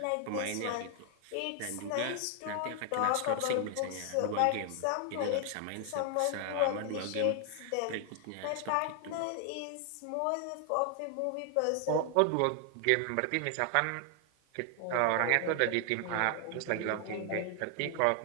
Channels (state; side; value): different; both; correlation 0.00